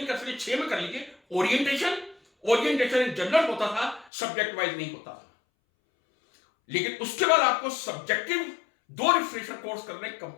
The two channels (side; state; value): right; drops out; at 4.1 s